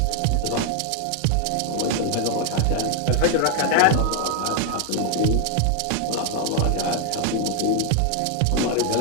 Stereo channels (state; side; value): different; both; correlation 0.00